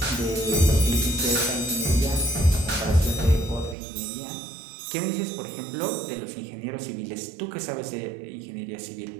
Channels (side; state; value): left; drops out; at 3.8 s